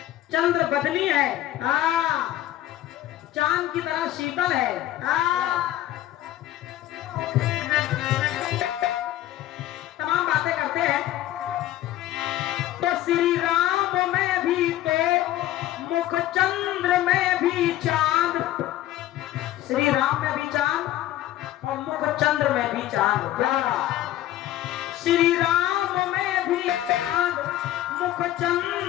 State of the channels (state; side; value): quieter; right; 13.8 dB